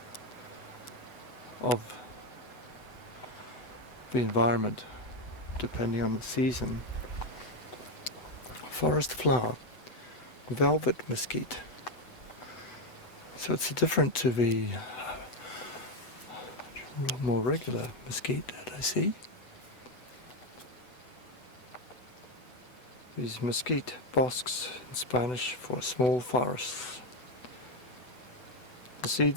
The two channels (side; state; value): right; late; 8.0 ms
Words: of the environment depending on the season. Forest flower, velvet mesquite, So it's different to the more regular mesquite that I see. These mesquite bosques in Spanish for small forests. The